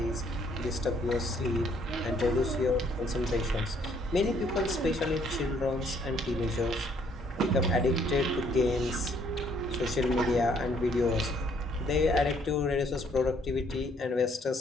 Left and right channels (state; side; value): normal; both; correlation 0.65